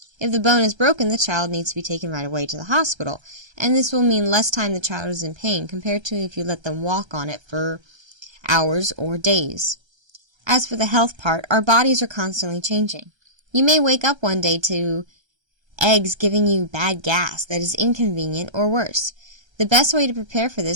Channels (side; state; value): left; late; 1.3 ms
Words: If the bone is broken, the child needs to be taken right away to the hospital, and this will mean less time the child is in pain compared to if you let them walk on it for hours or days. As for the health part, our bodies are constantly changing. You may wake up one day to eggs giving you bad gas that is inconvenient or worse. The best way to prepare for